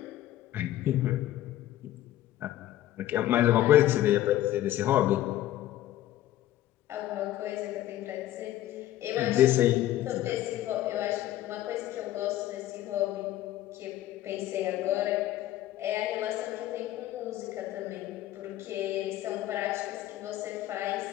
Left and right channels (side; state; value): right; quieter; 13.9 dB